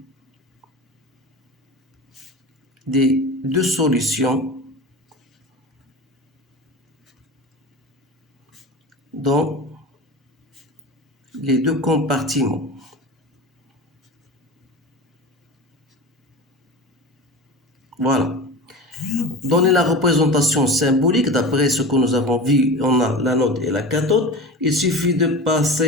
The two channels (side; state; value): both; normal; correlation 0.31